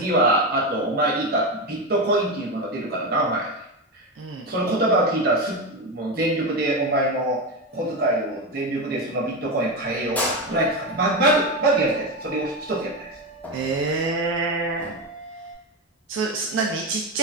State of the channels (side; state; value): both; normal; correlation 0.15